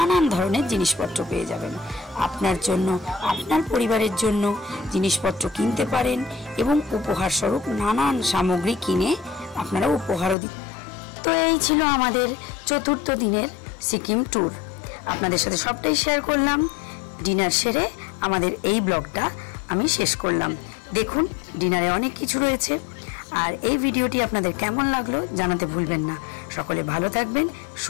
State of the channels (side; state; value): right; drops out; at 10.4 s